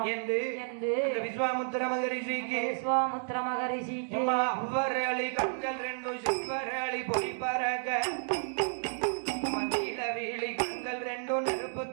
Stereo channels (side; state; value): left; silent; 57 dB below the other